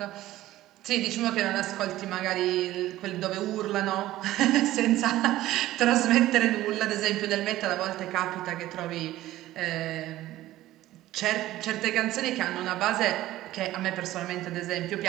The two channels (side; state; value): left; quieter; 15.3 dB